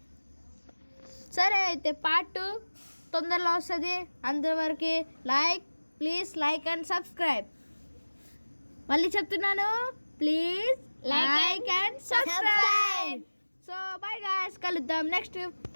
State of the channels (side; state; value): both; inverted; correlation -1.00